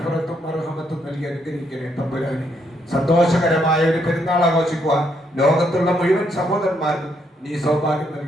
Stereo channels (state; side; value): normal; both; correlation 0.74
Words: മർഹമത്തും നൽകി അനുഗ്രഹിക്കണേ തമ്പുരാനെ. സന്തോഷകരമായ ഒരു പെരുന്നാൾ ആഘോഷിക്കുവാൻ ലോകത്തുള്ള മുഴുവൻ സഹോദരന്മാർക്കും നീ സൗഭാഗ്യം